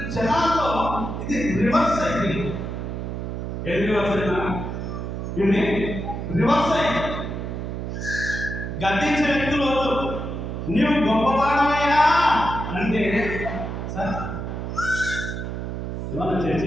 జనాల్లో ఇది రివర్స్ అయింది. ఏది రివర్స్ అయినా? ఇది రివర్స్ అయింది. గద్దించే వ్యక్తులు నీవు గొప్పవాడమయ్యా అంటే, సార్ ఇవాళ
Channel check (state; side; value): noise; right; hum, 5 dB below the sound